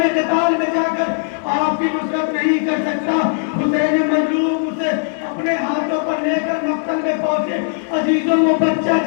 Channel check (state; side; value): silent; right; digital silence